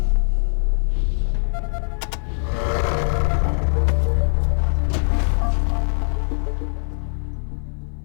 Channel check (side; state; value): right; silent; 59 dB below the other